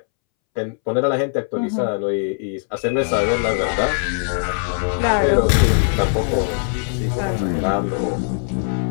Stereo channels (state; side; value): silent; right; 66 dB below the other